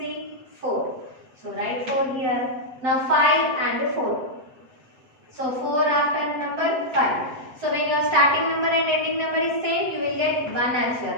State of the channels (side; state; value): left; late; 7.9 ms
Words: 4. So write 4 here. Now 5 and 4. So 4 after number 5. So when your starting number and ending number is same, you will get 1 as your